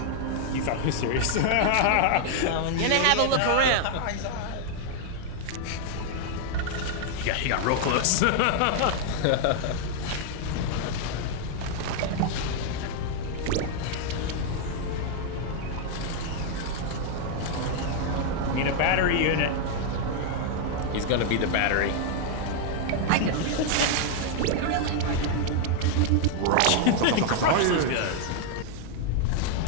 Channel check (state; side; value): different; both; correlation 0.00